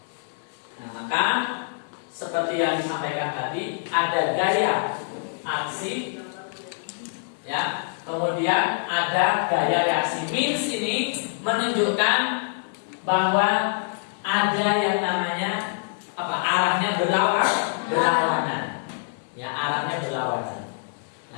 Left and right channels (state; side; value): silent; right; digital silence